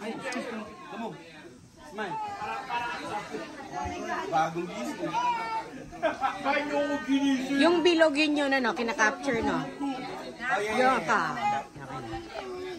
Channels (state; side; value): identical; both; correlation 1.00